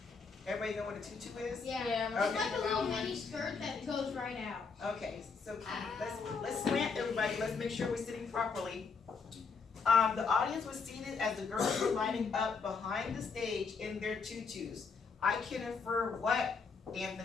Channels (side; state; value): right; quieter; 5.1 dB